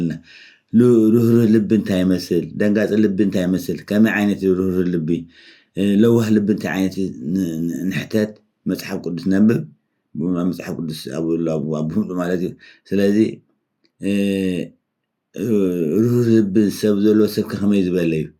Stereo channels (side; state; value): both; identical; correlation 1.00